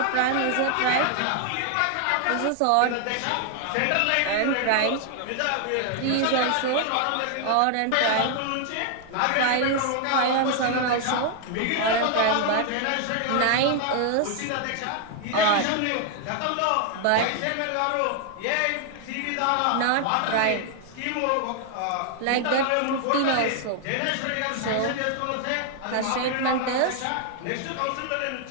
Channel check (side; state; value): both; different; correlation 0.00